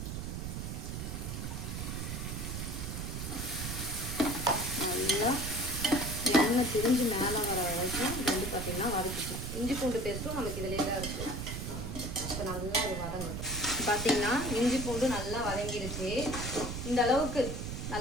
நல்லா எண்ணெய் திரிஞ்சு மேலே வர வரைக்கும் இது வந்து பார்த்திங்கன்னா வதக்கிக்கலாம். இஞ்சி பூண்டு பேஸ்ட்டும் நமக்கு இதிலே தான் இருக்குது. இப்போ நல்லா இது வதங்கட்டும். பார்த்திங்கன்னா இஞ்சி பூண்டு நல்லா வதங்கிடுச்சு. இந்த அளவுக்கு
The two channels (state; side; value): noise; right; rumble, 5 dB below the sound